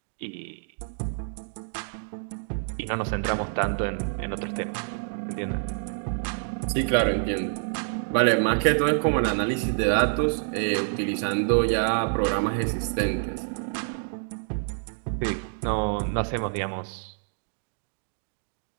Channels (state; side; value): silent; left; digital silence